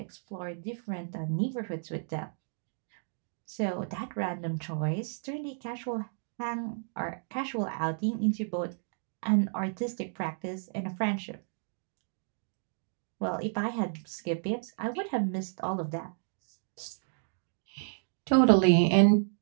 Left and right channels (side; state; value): left; silent; digital silence